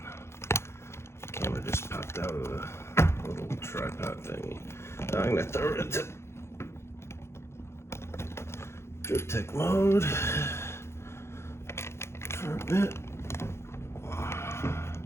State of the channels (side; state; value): right; late; 0.13 ms